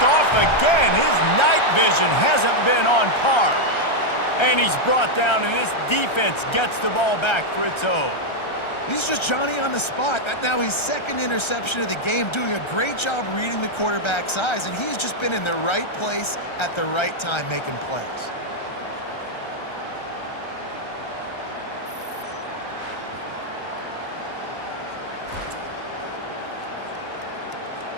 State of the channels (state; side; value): late; right; 1.3 ms